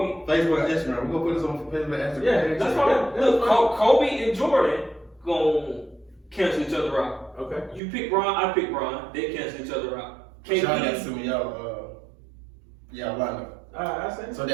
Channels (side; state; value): left; drops out; at 7.8 s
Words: Facebook and Instagram. We're gonna put this on Facebook and Instagram. Yeah, That's fine. Look, Kobe and Jordan gonna cancel each other out. Okay. You pick Bron, I pick Bron. They cancel each other out. Y'all got to KD, send me y'all lineup. I say. So